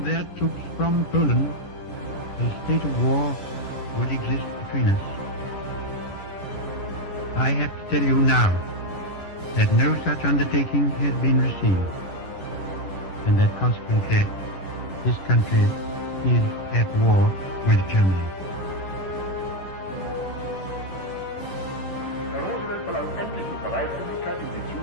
troops from Poland, a state of war would exist between us. I have to tell you now that no such undertaking has been received, and that consequently this country is at war with Germany. Herr Roosevelt verlangt endlich die Bereitwilligkeit, in die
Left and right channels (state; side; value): late; right; 11 ms